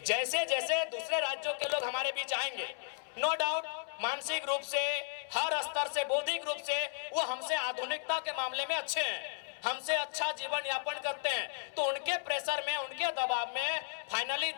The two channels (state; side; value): silent; right; 55 dB below the other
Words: जैसे दूसरे राज्यों के लोग हमारे बीच आएंगे, नो डाउट मानसिक रूप से, हर स्तर से, बौद्धिक रूप से वो हमसे आधुनिकता के मामले में अच्छे हैं, हमसे अच्छा जीवन यापन करते हैं, तो उनके प्रेशर में, उनके दबाव में फाइनली